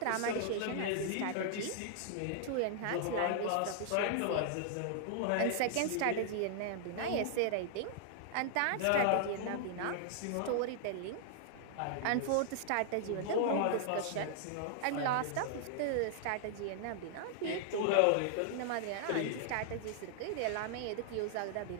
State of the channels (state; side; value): different; both; correlation -0.01